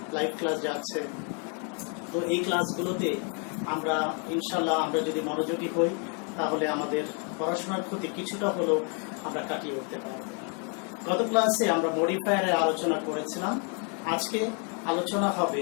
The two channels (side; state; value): right; quieter; 36.9 dB